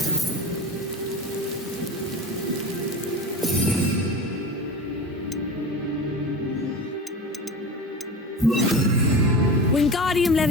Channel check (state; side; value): normal; both; correlation 0.31